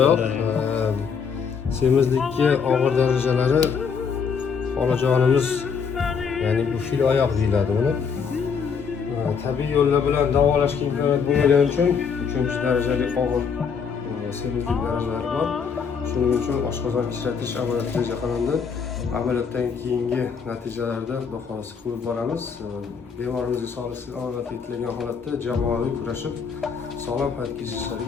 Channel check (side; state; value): right; quieter; 6.2 dB